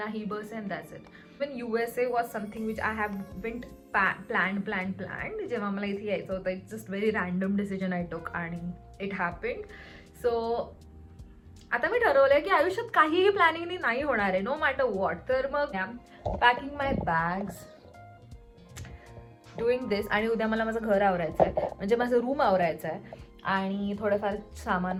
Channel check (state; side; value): identical; both; correlation 1.00